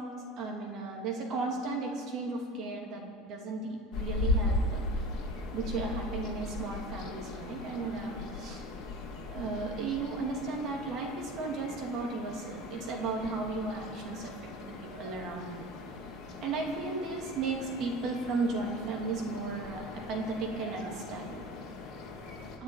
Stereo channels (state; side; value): normal; both; correlation 0.35